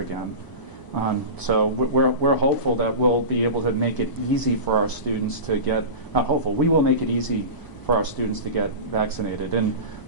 again. So we're hopeful that we'll be able to make it easy for our students to get, not hopeful, we will make it easy for our students to get vaccinated. And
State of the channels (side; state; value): right; late; 1.0 ms